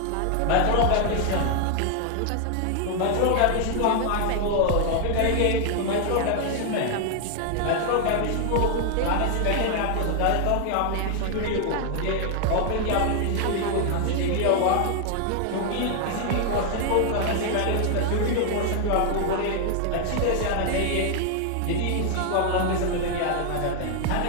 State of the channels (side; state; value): both; different; correlation 0.00